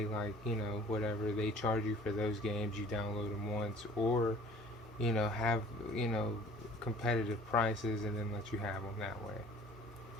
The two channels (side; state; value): both; normal; correlation 0.49